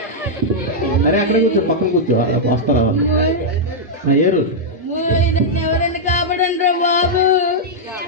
అరే అక్కడ కూర్చో, పక్కన కూర్చో, వస్తారా వాళ్ళు. ఏరు ఎవరైనా కాపాడండి రా బాబు.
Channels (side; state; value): both; normal; correlation -0.06